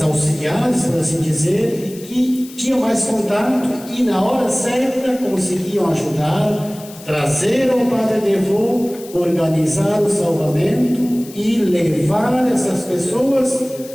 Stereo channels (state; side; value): noise; left; hiss, 18 dB below the sound